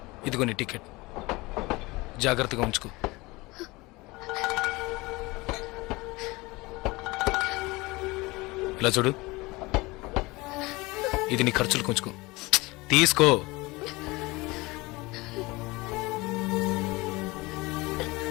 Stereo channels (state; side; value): quieter; right; 22.8 dB